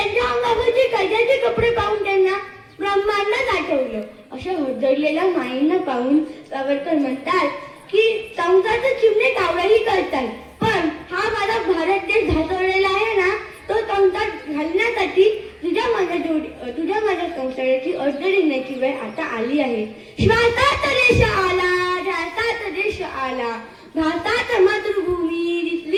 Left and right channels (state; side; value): identical; both; correlation 1.00